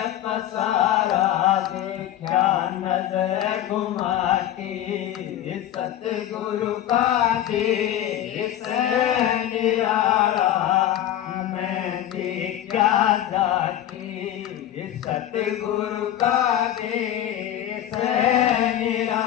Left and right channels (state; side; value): quieter; right; 11.9 dB